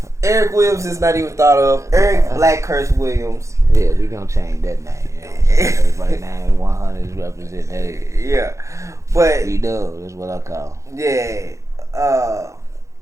Eric Williams is not even thought of. Eric BlackCurse Williams. Yeah, we gonna change that name. Everybody name 100 is represented. Yeah, but we do. That's what I call. Yeah.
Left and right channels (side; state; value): left; late; 0.15 ms